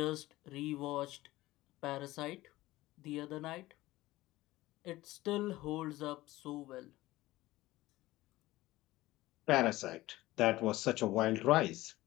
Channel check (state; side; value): quieter; right; 17.6 dB